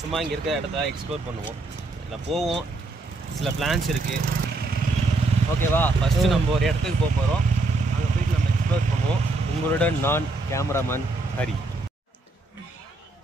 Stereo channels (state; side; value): quieter; left; 3.1 dB